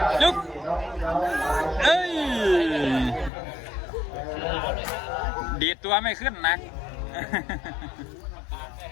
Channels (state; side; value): drops out; right; at 3.3 s